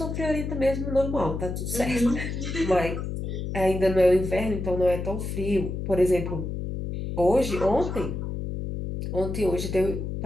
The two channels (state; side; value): noise; left; hum, 4 dB below the sound